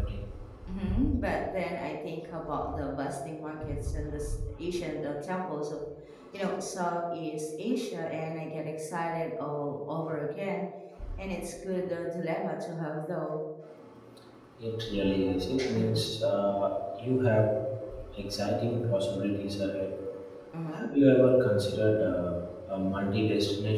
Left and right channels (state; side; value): identical; both; correlation 1.00